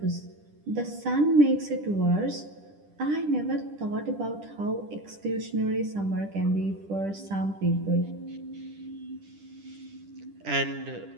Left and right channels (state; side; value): late; left; 10 ms